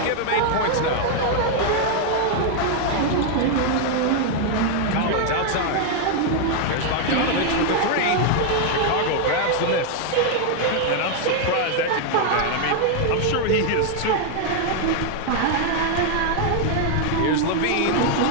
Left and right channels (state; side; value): different; both; correlation 0.00